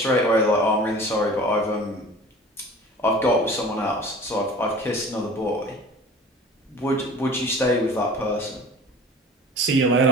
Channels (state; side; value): normal; both; correlation 0.42